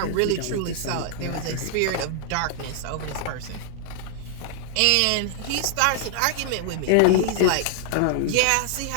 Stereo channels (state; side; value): different; both; correlation 0.00